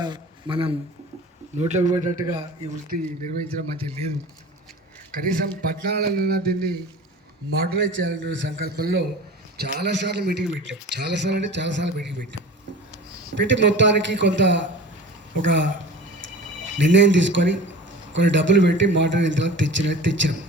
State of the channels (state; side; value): normal; both; correlation 0.38